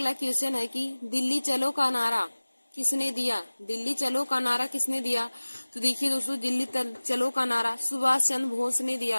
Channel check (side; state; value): both; inverted; correlation -1.00